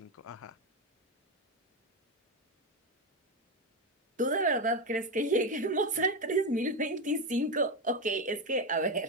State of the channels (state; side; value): normal; both; correlation 0.12